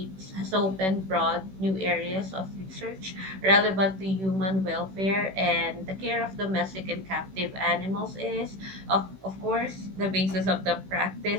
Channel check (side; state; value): left; late; 16 ms